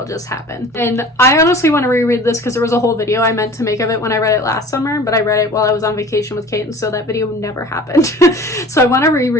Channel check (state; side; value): normal; both; correlation 0.43